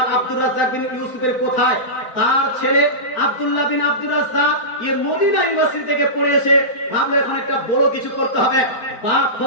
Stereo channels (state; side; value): late; right; 4.5 ms